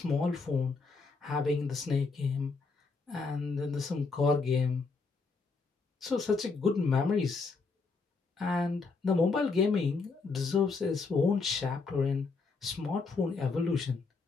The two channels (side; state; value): right; quieter; 4.3 dB